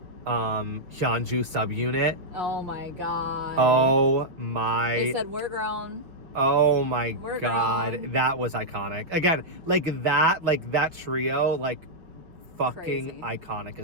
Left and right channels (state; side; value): late; left; 6.0 ms